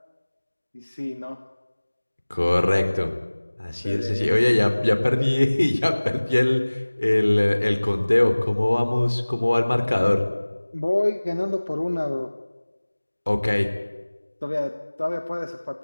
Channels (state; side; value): inverted; both; correlation -1.00